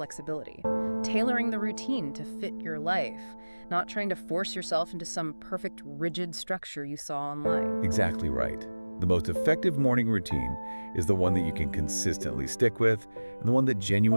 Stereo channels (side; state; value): both; inverted; correlation -1.00